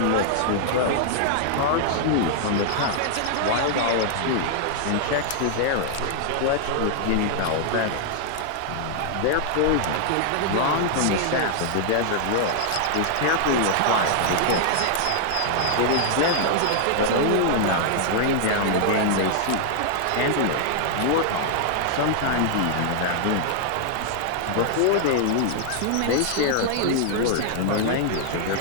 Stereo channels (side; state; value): both; different; correlation -0.01